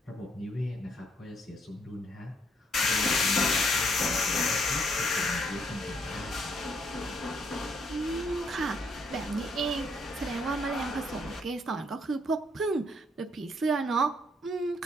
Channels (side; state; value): both; normal; correlation 0.70